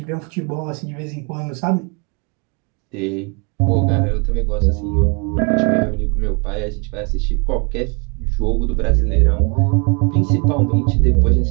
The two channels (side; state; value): left; quieter; 33.5 dB